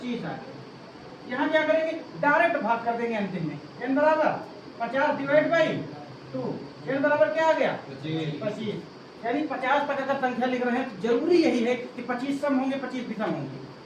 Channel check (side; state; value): both; identical; correlation 1.00